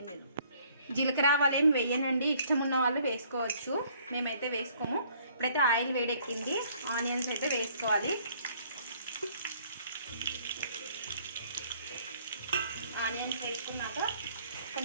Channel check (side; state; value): both; inverted; correlation -0.61